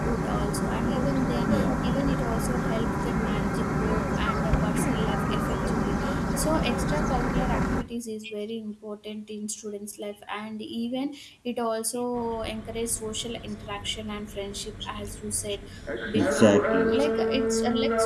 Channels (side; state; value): both; identical; correlation 1.00